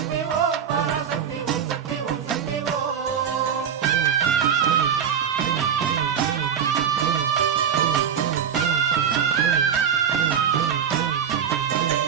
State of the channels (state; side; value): quieter; left; 7.9 dB